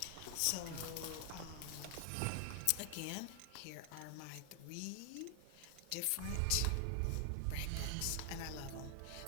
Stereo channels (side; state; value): both; different; correlation 0.00